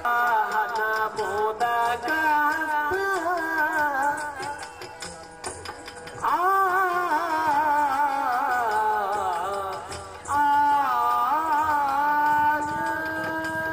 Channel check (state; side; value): identical; both; correlation 1.00